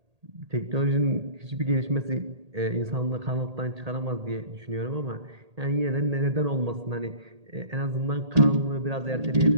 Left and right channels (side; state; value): left; late; 1.8 ms